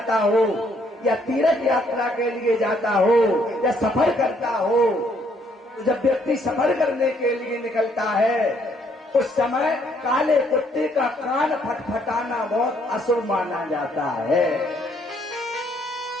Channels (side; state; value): both; normal; correlation 0.68